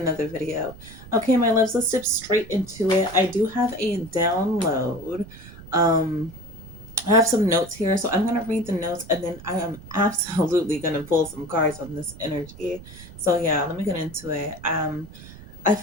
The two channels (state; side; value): noise; right; rumble, 17 dB below the sound